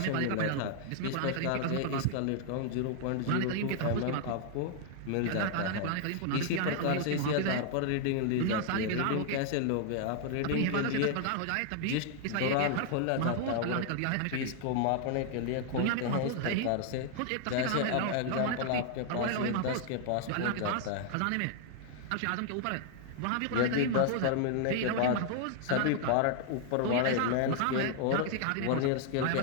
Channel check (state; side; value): different; both; correlation 0.00